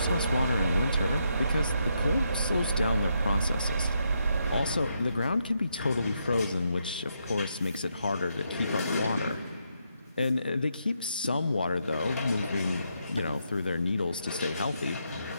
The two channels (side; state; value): both; inverted; correlation -0.79